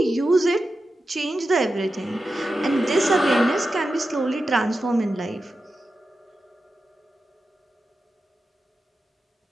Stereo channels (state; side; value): normal; both; correlation 0.91